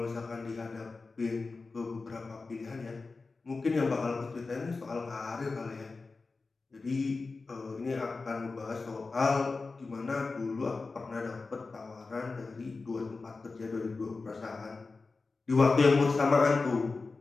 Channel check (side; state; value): right; quieter; 4.0 dB